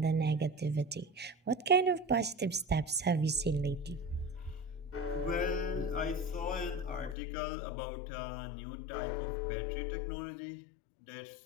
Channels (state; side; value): drops out; right; at 7.2 s